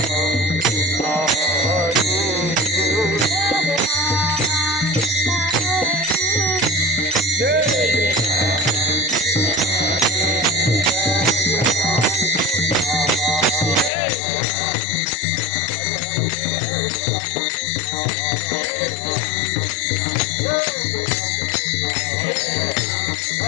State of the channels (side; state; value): right; drops out; at 13.9 s